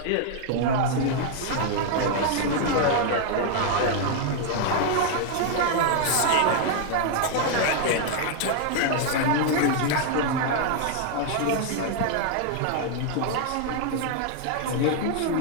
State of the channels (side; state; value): both; different; correlation 0.00